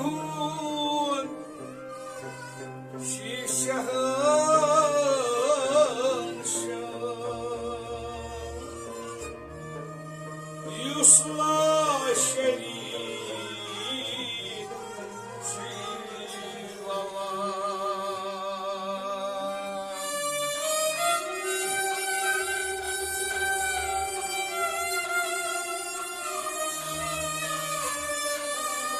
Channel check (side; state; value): both; identical; correlation 1.00